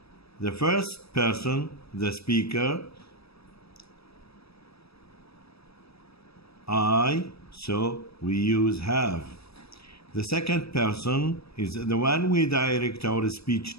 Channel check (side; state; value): right; late; 0.77 ms